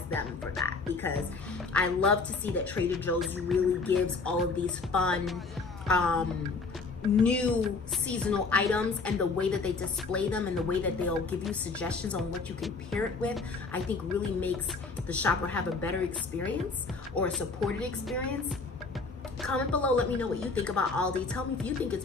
them for that, because I love to see that Trader Joe's really gives all of these fun new seasonal items, and the way that they display them and the way that they'll give you suggestions on what you can pair it with, I think really makes the shopper have a better experience, or a supported experience. Comment below, let me know what you think about Aldi. Tell me if you think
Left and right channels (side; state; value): right; quieter; 4.2 dB